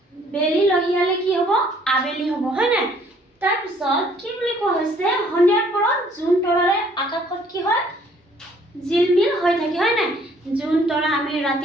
বেলি লহিয়ালে কি হ'ব? আবেলি হ'ব, হয় নাই? তাৰপিছত কি বুলি কোৱা হৈছে? সন্ধিয়াৰ পৰত জোন তৰাৰে আকাশত কি হয়? জিলমিল হৈ থাকে, হয় নাই? জোন তৰা আমি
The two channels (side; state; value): both; normal; correlation 0.61